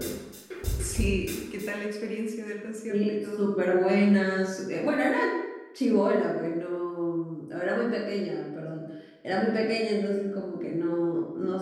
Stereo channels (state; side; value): identical; both; correlation 1.00